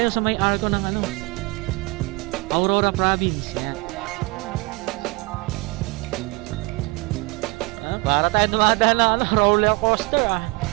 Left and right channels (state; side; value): quieter; left; 26.3 dB